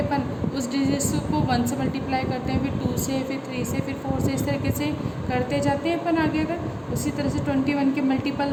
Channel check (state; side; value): identical; both; correlation 1.00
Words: अपन उस डिजिट्स को 1 से मल्टीप्लाई करते हैं, फिर 2 से, फिर 3 से, फिर 4 से, इस तरीके से करते जाते हैं अपन आगे। अगर उसी तरह से 21 के